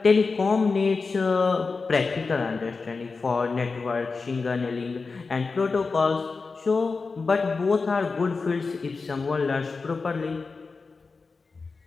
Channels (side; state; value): right; quieter; 4.3 dB